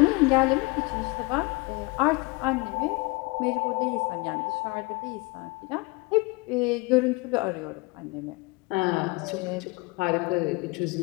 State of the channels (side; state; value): right; quieter; 25.8 dB